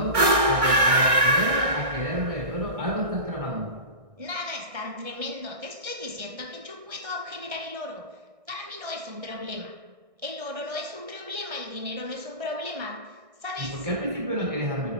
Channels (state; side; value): late; left; 1.6 ms